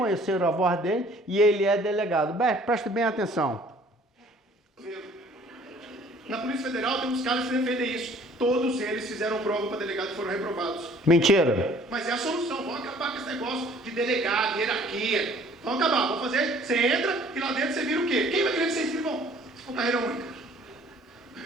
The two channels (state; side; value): normal; both; correlation 0.55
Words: a voz dele e ele é delegado. Preste bem atenção. Na Polícia Federal tem uns caras que defendem isso. Todos eles fizeram prova para delegado e foram reprovados. Mentira. Mas é a solução. Vão acabar com esse negócio de delegado, hierarquia. Vão acabar. Vão fazer. Você entra e lá dentro você vira o quê? Quem vai querer ser escrivão? Se for carreira única.